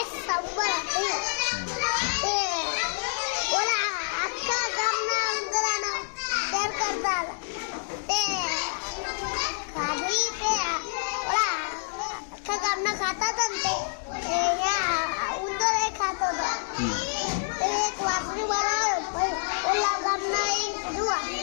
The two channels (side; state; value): right; silent; digital silence